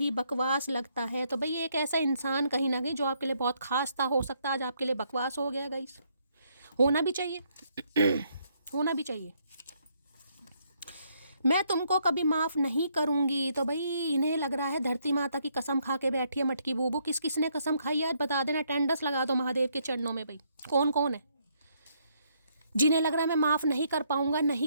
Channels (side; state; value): both; inverted; correlation -0.72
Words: बकवास लगता है। तो भाई एक ऐसा इंसान कहीं ना कहीं जो आपके लिए बहुत खास था, हो सकता है आज आपके लिए बकवास हो गया गाइस। होना भी चाहिए होना भी चाहिए। मैं तुमको कभी माफ़ नहीं करूंगी। तो भाई इन्हें लग रहा है धरती माता की कसम खा के बैठी है मटकी बूबू। किस किस ने कसम खाई आज बता देना, टेंडस लगा दो महादेव के चरणों में। भाई कौन कौन है जिन्हें लग रहा है मैं माफ़ नहीं कर पाऊंगा,